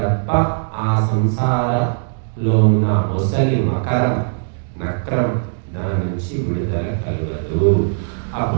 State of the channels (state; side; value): silent; left; digital silence